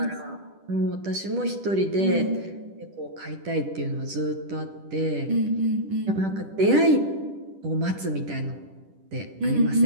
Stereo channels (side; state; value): left; late; 10 ms